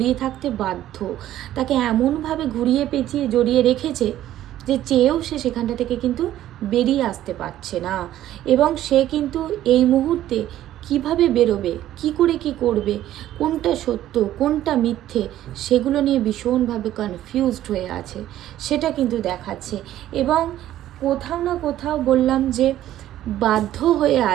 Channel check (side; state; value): left; quieter; 13.0 dB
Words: থাকতে বাধ্য, তাকে এমনভাবে ঘুরিয়ে পেঁচিয়ে জড়িয়ে রেখেছে যে চেয়েও সে সেখানটা থেকে কিন্তু বেরিয়ে আসতে পারছে না। এবং সে কিন্তু এই মুহূর্তে কিভাবে বেরোবে, কি করে কি করবে, কোনটা সত্য কোনটা মিথ্যে, সেগুলো নিয়ে ভীষণভাবে কনফিউজড হয়ে আছে, সেটা কিন্তু দেখাচ্ছে। এবং কোথাও না কোথাও বললাম যে বাধ্য হয়ে